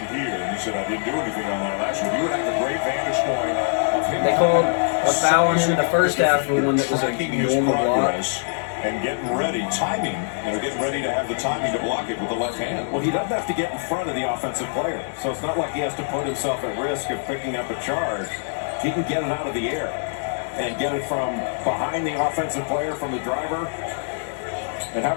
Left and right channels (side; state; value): right; silent; 63 dB below the other